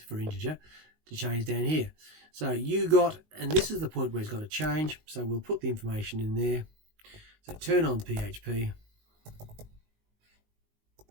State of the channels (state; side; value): late; left; 19 ms